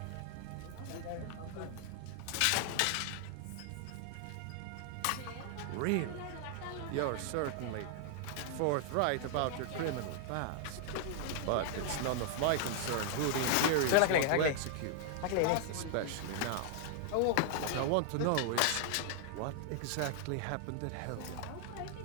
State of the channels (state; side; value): different; both; correlation 0.00